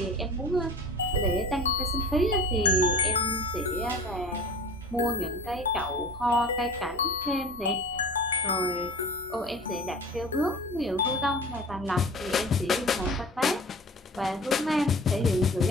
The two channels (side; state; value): both; normal; correlation 0.39